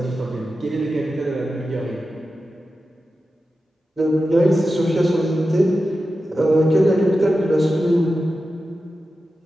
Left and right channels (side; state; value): both; normal; correlation 0.92